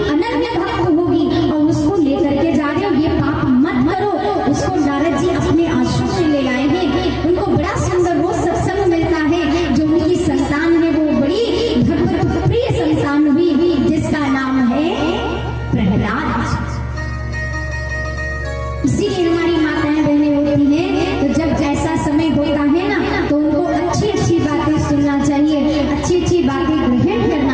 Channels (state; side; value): identical; both; correlation 1.00